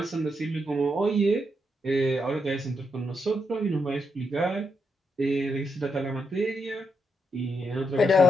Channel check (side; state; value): both; normal; correlation 0.81